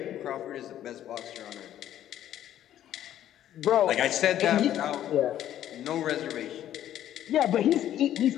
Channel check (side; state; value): right; quieter; 11.6 dB